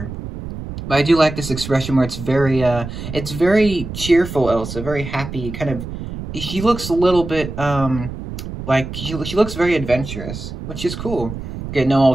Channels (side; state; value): right; noise; rumble, 9 dB below the sound